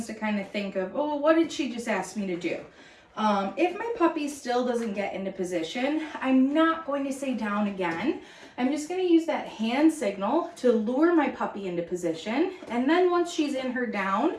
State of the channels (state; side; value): identical; both; correlation 1.00